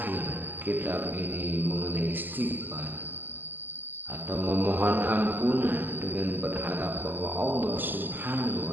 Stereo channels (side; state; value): left; late; 0.090 ms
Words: kitab ini mengenai istighfar atau memohon ampunan dengan berharap bahwa Allah Subhanahu